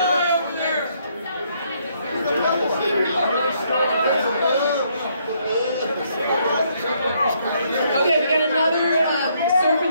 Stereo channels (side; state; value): both; inverted; correlation -0.71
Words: Okay, we got another surf